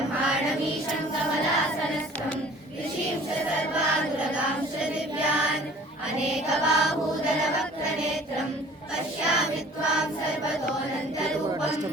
कमलासनस्थं ऋषींश्च सर्वानुरगांश्च दिव्यान् अनेकबाहूदरवक्त्रनेत्रम् पश्यामि त्वां सर्वतोऽनन्तरूपम्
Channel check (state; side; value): normal; both; correlation 0.49